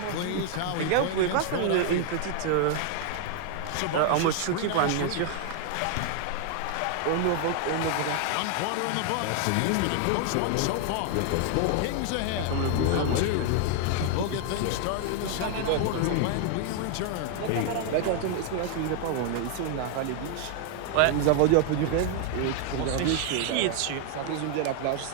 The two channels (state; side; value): different; both; correlation 0.00